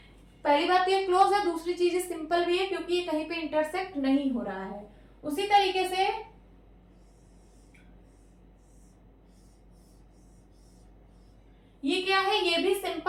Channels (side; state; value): both; identical; correlation 1.00